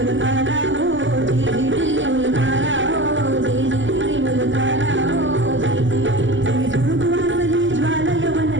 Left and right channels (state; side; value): late; left; 0.55 ms